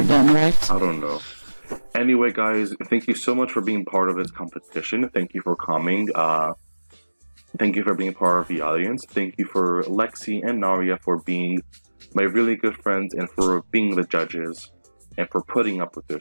then, right? I don't know. Anyway, guys, thank you so much for being part of this competition. Thank you for coming. Thank you for being part of the audience. Thank you for Lexi and Naria for being my really good friends, and for being the judges, and for putting up with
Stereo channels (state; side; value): inverted; both; correlation -1.00